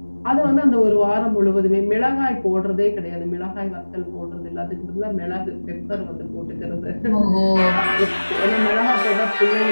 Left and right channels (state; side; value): inverted; both; correlation -1.00